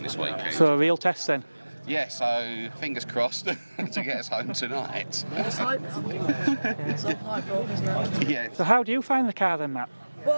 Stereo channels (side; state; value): both; inverted; correlation -1.00